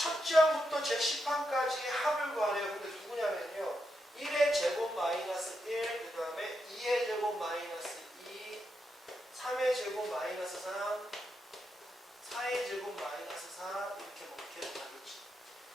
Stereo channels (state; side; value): normal; both; correlation 0.84